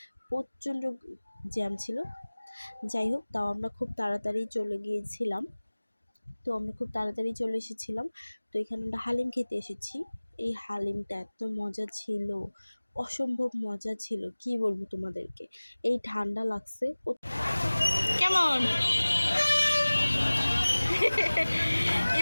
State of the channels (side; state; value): both; inverted; correlation -1.00